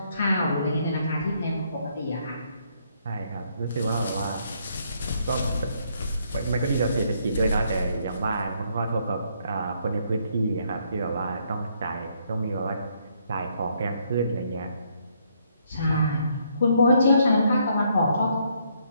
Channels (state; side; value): inverted; both; correlation -0.71